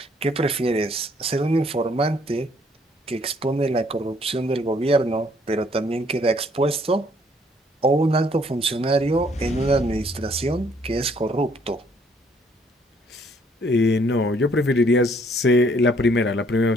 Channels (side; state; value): both; normal; correlation 0.64